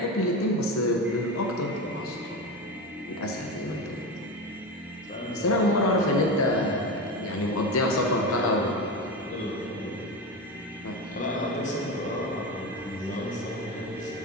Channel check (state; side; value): normal; both; correlation 0.21